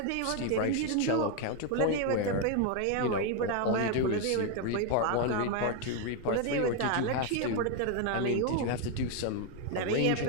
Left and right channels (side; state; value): both; different; correlation 0.01